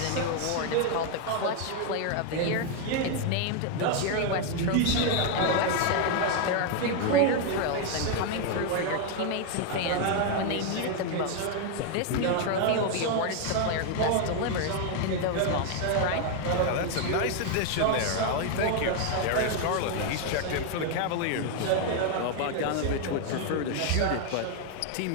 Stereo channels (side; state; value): both; different; correlation 0.01